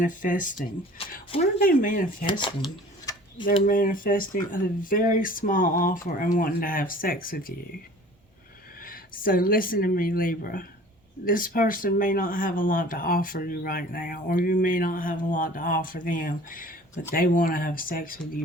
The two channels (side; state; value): both; normal; correlation 0.46